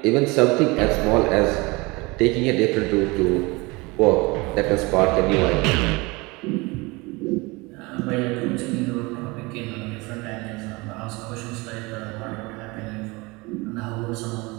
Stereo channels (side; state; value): left; quieter; 24.7 dB